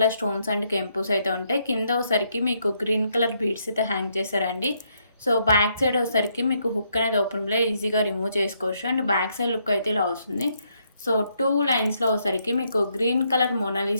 స్టోన్స్ అండ్ కెంపుస్ అయితే ఉంటాయి. కింద వచ్చేసరికి మీకు గ్రీన్ కలర్ బీడ్స్ అయితే హ్యాంగ్ చేశారండి. సో బ్యాక్ సైడ్ వచ్చేసరికి మీకు హుక్ అనేది ఓపెన్లో ఈజీగా రిమూవ్ చేసుకోవచ్చు. అండ్ బ్యాక్ సైడ్ లుక్ అయితే ఇలా వస్తుంది. సో 2 లైన్స్లో వచ్చేసరికి మీకు గ్రీన్ కలర్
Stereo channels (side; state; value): both; inverted; correlation -0.75